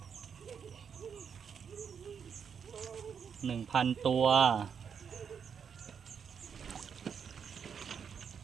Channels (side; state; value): left; quieter; 7.0 dB